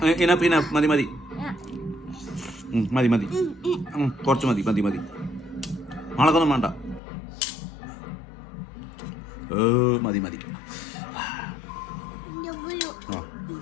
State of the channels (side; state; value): right; drops out; at 7.0 s